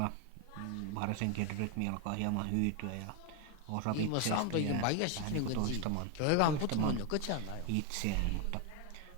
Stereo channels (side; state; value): both; different; correlation 0.01